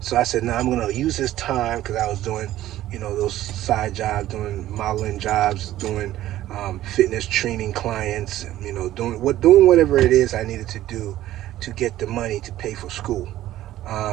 So I said, no, I'm gonna use this time, because I was doing, those side jobs, doing modeling jobs, doing fitness training clients, doing whatever it is I needed to do to get the money to pay for school.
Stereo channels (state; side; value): quieter; left; 14.0 dB